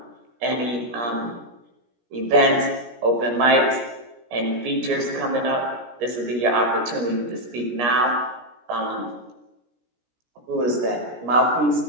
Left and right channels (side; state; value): left; late; 17 ms